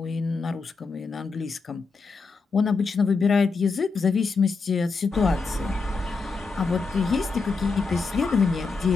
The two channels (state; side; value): quieter; right; 4.4 dB